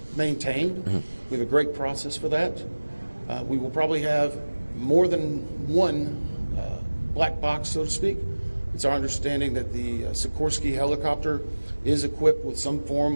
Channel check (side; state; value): both; inverted; correlation -1.00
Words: maintained. We have a great process for that. We will probably have more than one black box, so to speak. It's our understanding that the Sikorsky helicopter is equipped with some